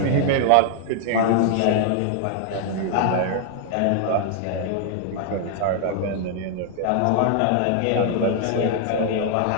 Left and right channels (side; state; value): both; different; correlation 0.00